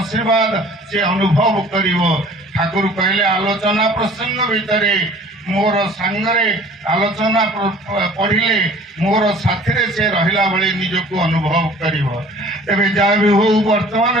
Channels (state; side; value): normal; both; correlation 0.49